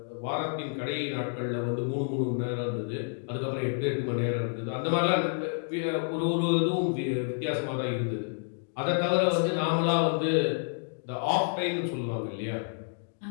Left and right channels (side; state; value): right; silent; digital silence